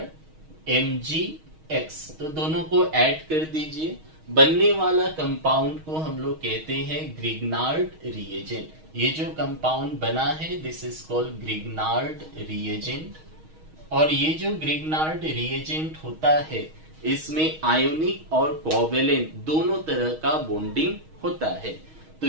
RMgX, तो दोनों को ऐड कर दीजिए। बनने वाला कंपाउंड को हम लोग कहते हैं ग्रिग्नार्ड रिएजेंट। ये जो कंपाउंड बना है this is called Grignard reagent. और ये जो ग्रिग्नार्ड रिएजेंट होता है इसमें आयोनिक और कोवेलेंट दोनों तरह का बॉन्डिंग होता है। तो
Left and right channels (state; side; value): late; left; 6.4 ms